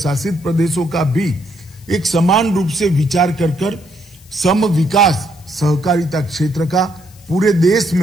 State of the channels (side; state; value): left; noise; hiss, 26 dB below the sound